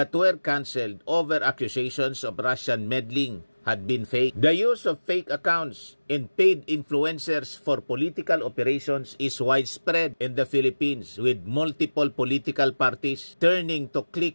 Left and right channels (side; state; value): both; inverted; correlation -1.00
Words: were cancelled over accusations of Russian meddling had been fake. The use of fake accounts and paid influencers for political operations is widespread in the Philippines, with multiple political parties turning to